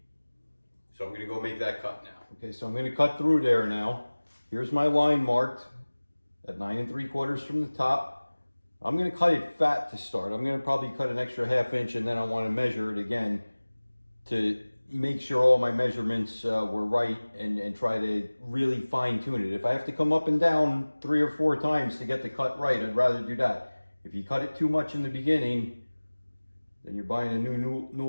So I'm going to go make that cut now. Okay, so I'm going to cut through there now. Here's my line marked at 9 3/4 from the top. I'm going to cut it fat to start. I'm going to probably cut an extra 1/2 inch, and then I want to measure it again to make sure all my measurements were right, and try to really fine tune it. If I have to come up and down 3 or 4 times to get the cut right, I'd rather do that. If you cut it too much in the beginning, then you're buying a new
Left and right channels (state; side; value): inverted; both; correlation -1.00